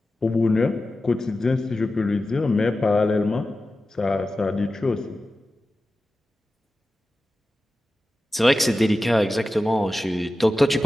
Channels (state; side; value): normal; both; correlation 0.94